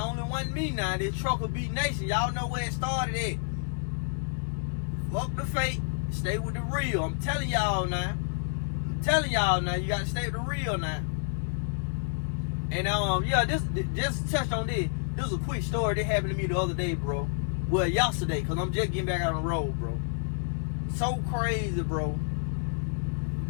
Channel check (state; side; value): silent; right; digital silence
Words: one me now. This Trucker Beat Nation. Y'all know where it started at. Fuck the fake. Stay with the real. I'm telling y'all now. You gotta stay with the real now. And yeah, this just touched on this. This was a quick story that happened to me the other day, bro. Well, yesterday, because I'm just getting back out on the road, bro. So crazy, bro.